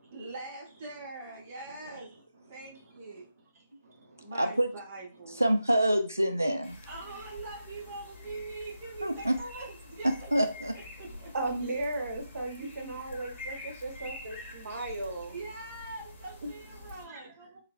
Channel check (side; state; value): both; inverted; correlation -0.87